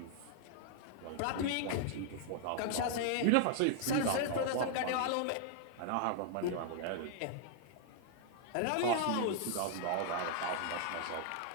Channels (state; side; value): different; both; correlation 0.00